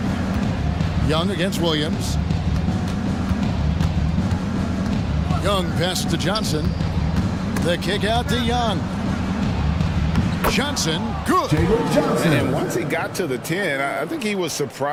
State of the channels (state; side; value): identical; both; correlation 1.00